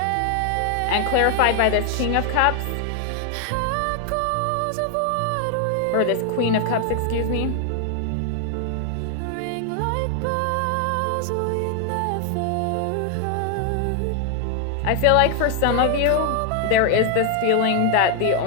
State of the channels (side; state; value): both; different; correlation 0.00